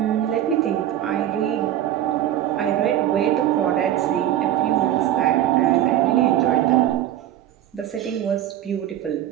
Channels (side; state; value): left; quieter; 12.0 dB